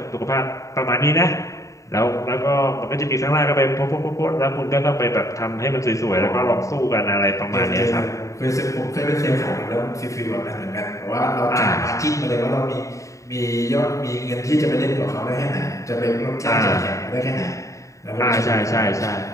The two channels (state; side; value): late; right; 0.16 ms